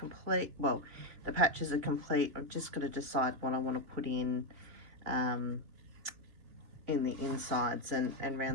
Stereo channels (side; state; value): left; late; 3.3 ms